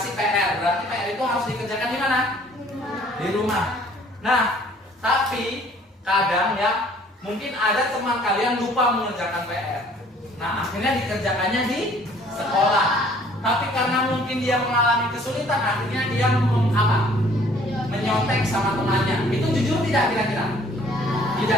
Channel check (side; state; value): both; normal; correlation 0.57